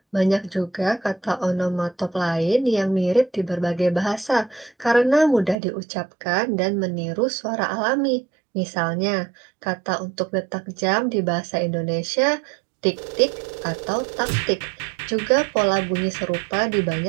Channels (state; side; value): drops out; left; at 5.6 s